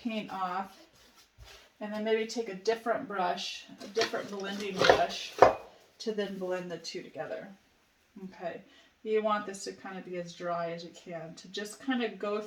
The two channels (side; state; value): both; identical; correlation 1.00